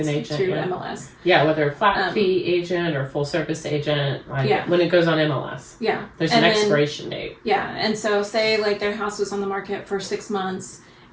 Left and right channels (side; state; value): both; identical; correlation 1.00